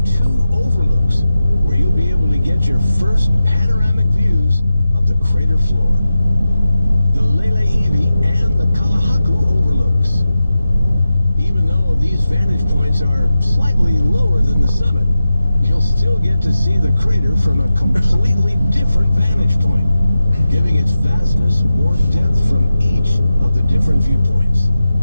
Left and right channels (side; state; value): both; inverted; correlation -0.92